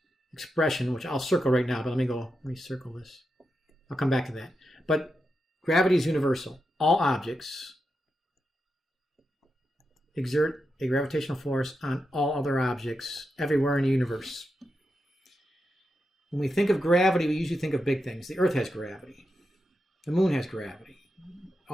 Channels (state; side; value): normal; both; correlation 0.87